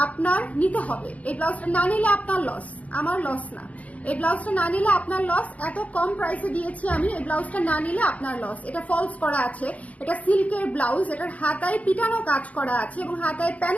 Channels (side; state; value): right; late; 0.069 ms